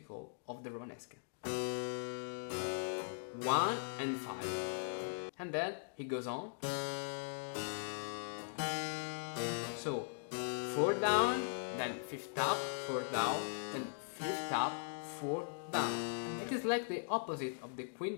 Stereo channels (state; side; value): silent; right; digital silence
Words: of the Romanesca. 1 and 5. And then he goes on. So 4 down, then 5th up, 4 down, then 5th up, 4 down. It is like the opposite of the